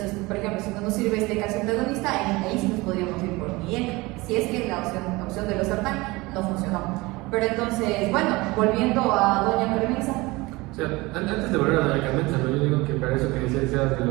por ejemplo, si no nos sirve este calcio antagonista, ahí sí nos podríamos ir por un IECA, si es que la opción de losartán no funcionó. Pero entonces, bueno, volviendo a doña Carmenza. O sea, antes de volver a doña Carmenza, ¿no? Yo digo que para eso que decías de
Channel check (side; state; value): left; quieter; 22.5 dB